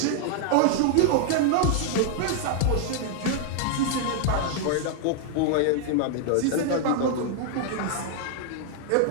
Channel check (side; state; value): both; different; correlation 0.00